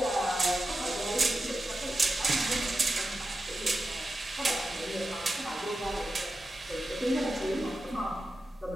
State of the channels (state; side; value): normal; both; correlation 0.91